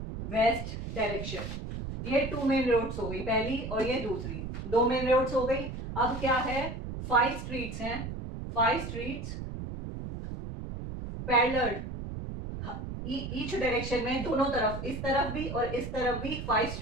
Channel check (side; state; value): right; noise; rumble, 7 dB below the sound